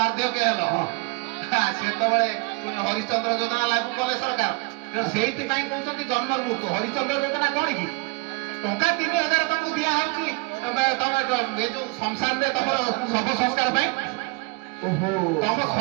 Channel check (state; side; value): quieter; left; 27.8 dB